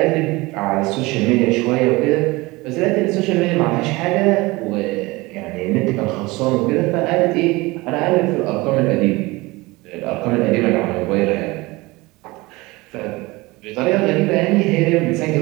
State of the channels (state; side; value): quieter; left; 22.2 dB